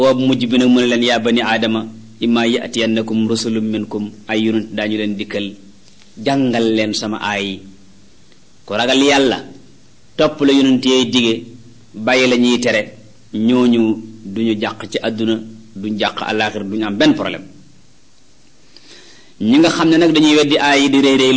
mujj bi nag mu ne leen yaa bani aadama imma yatiyannakum rusulun minkum ay yonent daañu leen dikkal jàngal leen sama aay ku ragal yàlla topp la yonent yee dige bàyyi la ñuy tere ñooñu duñu jàq ci àdduna duñ jàq àllaaxira duñu am benn problème ñi nga xam ne nag dañuy weddi aay yi di réy réy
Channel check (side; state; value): both; identical; correlation 1.00